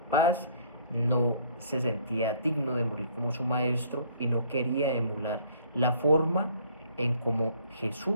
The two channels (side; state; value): both; inverted; correlation -0.59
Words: no se sentía digno de morir como su maestro, y no quería emular la forma en cómo